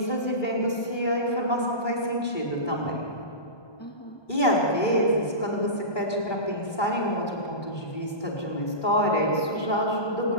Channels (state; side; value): late; right; 1.2 ms